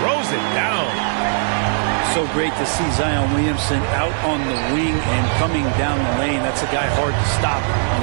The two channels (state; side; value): silent; left; digital silence